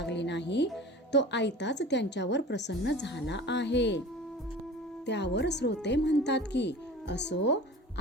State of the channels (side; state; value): both; normal; correlation 0.38